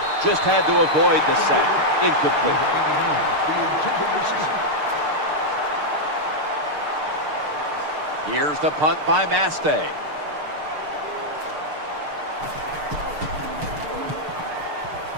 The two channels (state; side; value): late; left; 6.6 ms